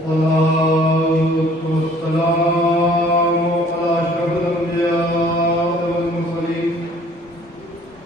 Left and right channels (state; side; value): normal; both; correlation 0.55